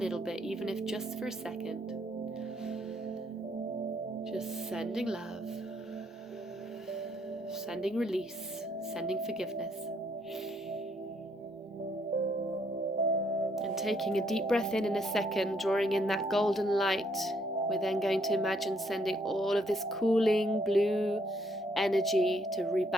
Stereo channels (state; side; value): normal; both; correlation 0.70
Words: bit, even if just for a second. Just sending love, sending release, sending forgiveness. And taking a deep breath in a second, drawing in that golden light, we're then going to imagine sending all of this cooling blue energy to